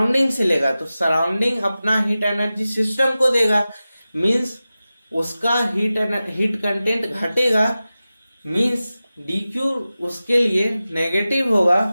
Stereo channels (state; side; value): inverted; both; correlation -0.95